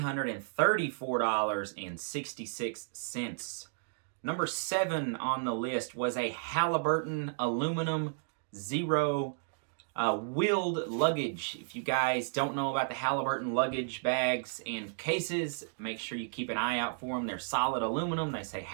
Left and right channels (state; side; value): silent; left; digital silence